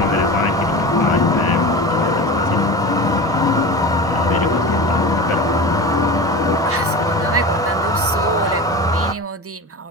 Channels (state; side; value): normal; both; correlation 0.30